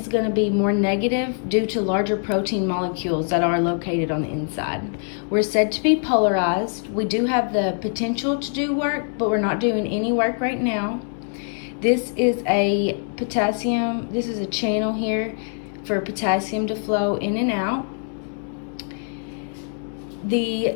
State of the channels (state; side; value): silent; right; 61 dB below the other